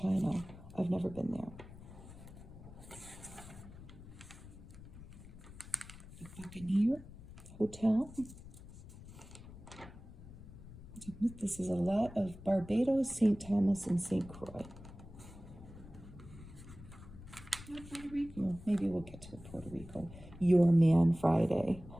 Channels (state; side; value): noise; left; rumble, 16 dB below the sound